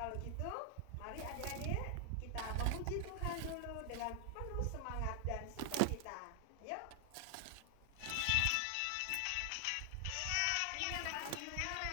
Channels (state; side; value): different; both; correlation 0.00